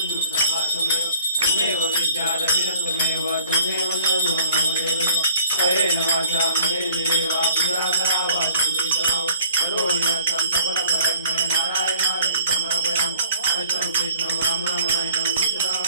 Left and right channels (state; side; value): inverted; both; correlation -0.52